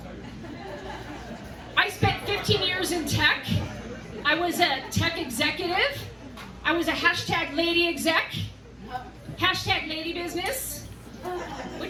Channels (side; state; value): both; identical; correlation 1.00